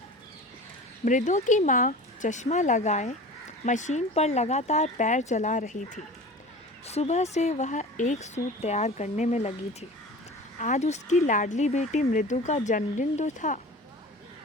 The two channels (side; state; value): both; normal; correlation 0.37